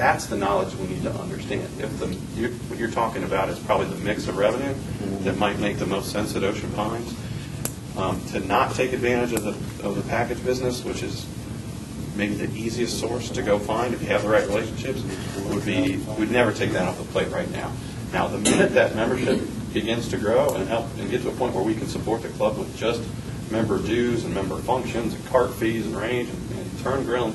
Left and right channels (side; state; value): both; identical; correlation 1.00